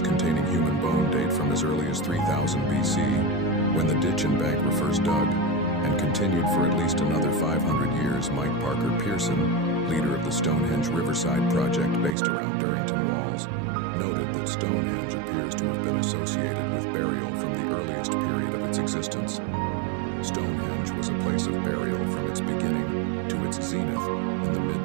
containing human bone date from as early as 3000 BC, when the ditch and bank were first dug, and continued for at least another 500 years. Mike Parker Pearson, leader of the Stonehenge Riverside project based around Durrington Walls, noted that Stonehenge appears to have been associated with burial from the earliest period of its existence. Stonehenge was a place of burial from its beginning to its zenith in the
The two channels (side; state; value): left; drops out; at 12.2 s